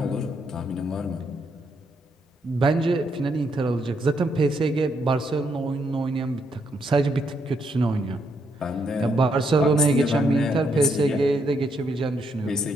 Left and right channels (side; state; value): both; normal; correlation 0.76